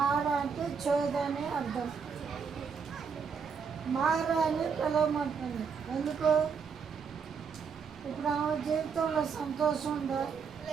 అంటే చేదు అనే అర్థం. మార అని పిలవమంటుంది. ఎందుకు? ఇప్పుడు ఆమె జీవితంలో సంతోషం ఉందా?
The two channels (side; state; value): left; quieter; 6.0 dB